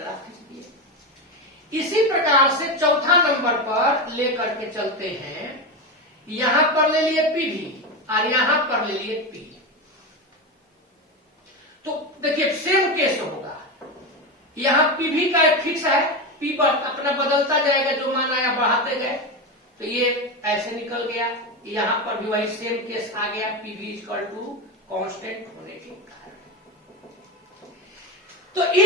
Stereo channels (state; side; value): normal; both; correlation 0.17